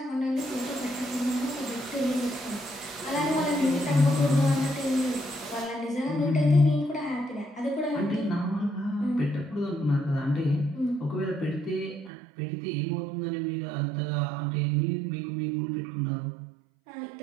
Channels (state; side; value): drops out; left; at 12.1 s